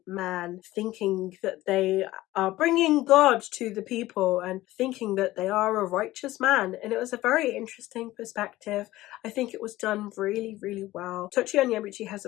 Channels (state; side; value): quieter; right; 16.8 dB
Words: man, thinking that they are bringing God to the people and thinking that they are a righteous man. And it was a very interesting perspective. I think it was done really, really well. Tochi Onyebuchi has